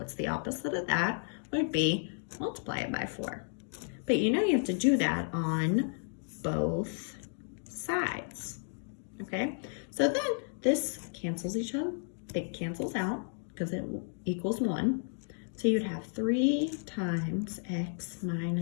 the opposite of that? Would be multiply it by 4. But you know you have to do that on both sides, okay? So then this cancels each other. It cancels out because it equals 1. So you'd have 3 times x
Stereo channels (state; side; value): silent; right; 56 dB below the other